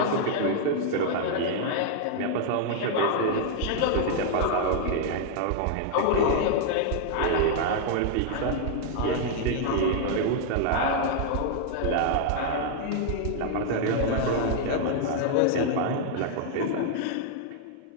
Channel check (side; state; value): both; different; correlation -0.01